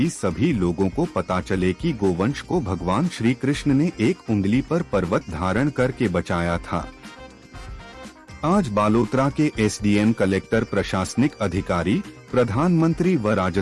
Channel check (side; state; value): both; identical; correlation 1.00